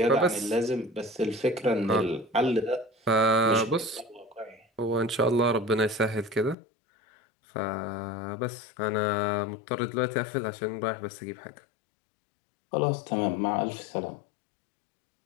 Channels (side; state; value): right; drops out; at 6.6 s